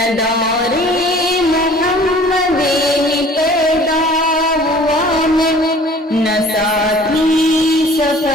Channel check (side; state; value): both; normal; correlation 0.49